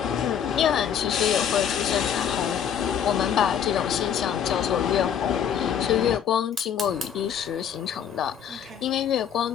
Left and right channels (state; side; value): quieter; right; 8.5 dB